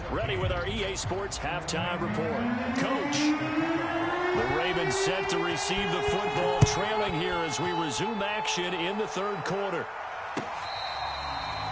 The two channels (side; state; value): both; identical; correlation 1.00